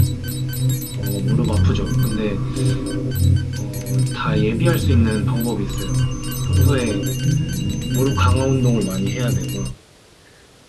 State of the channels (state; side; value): identical; both; correlation 1.00